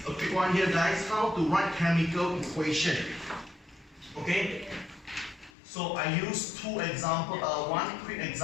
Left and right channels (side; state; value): right; drops out; at 5.5 s